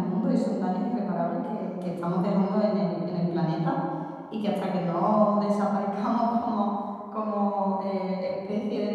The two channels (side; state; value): both; identical; correlation 1.00